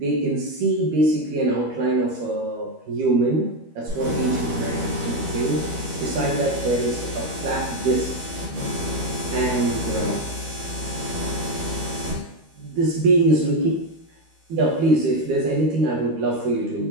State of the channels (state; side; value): late; left; 13 ms